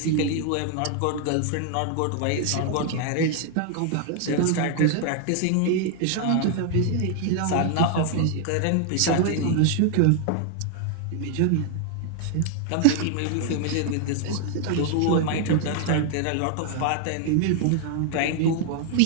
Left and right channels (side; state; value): both; different; correlation 0.00